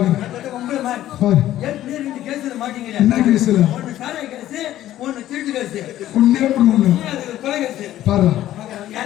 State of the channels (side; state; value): right; quieter; 13.3 dB